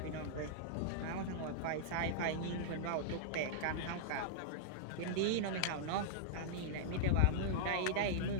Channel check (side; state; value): both; different; correlation -0.02